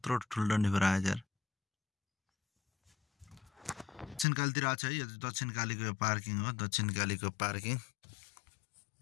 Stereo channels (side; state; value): right; drops out; at 4.2 s